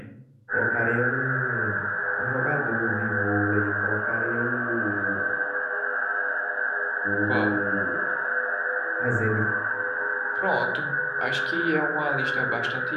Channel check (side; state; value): both; identical; correlation 1.00